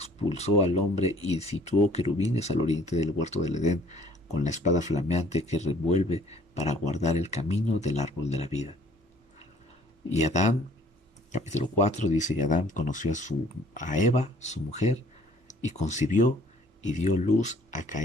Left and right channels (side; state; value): both; normal; correlation 0.57